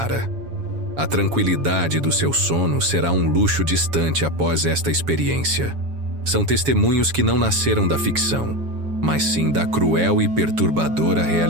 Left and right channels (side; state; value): left; late; 7.2 ms